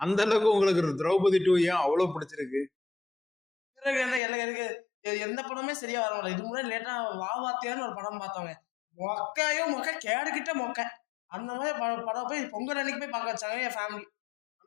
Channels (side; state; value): right; drops out; at 4.2 s